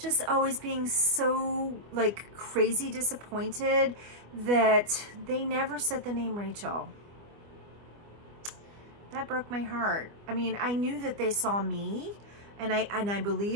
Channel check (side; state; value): left; late; 25 ms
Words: always being so like crazy disappointed that they never said the name Rachel. That broke my heart. I mean, I knew that they saw me, and I